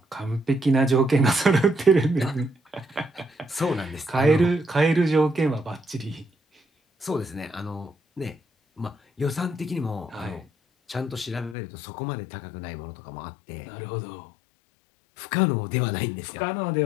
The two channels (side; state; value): right; drops out; at 11.6 s